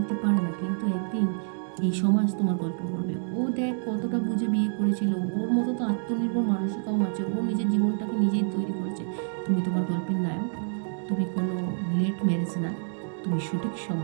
পারে না, কিন্তু একদিন এই সমাজ তোমার গল্প করবে। ও দেখ কতটা বুঝে বিয়ে করেছিল, ওর মতো তো আত্মনির্ভর মানুষই কম আছে, ও নিজের জীবনটাকে নিজেই তৈরি করেছে। তুমি তোমার গল্পের নায়ক। তুমি কোনো লেট ম্যারেজ না, তুমি সঠিক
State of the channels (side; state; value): left; silent; digital silence